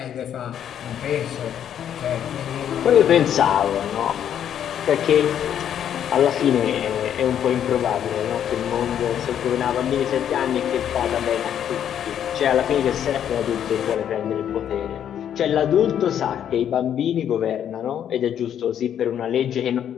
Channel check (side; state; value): right; quieter; 9.6 dB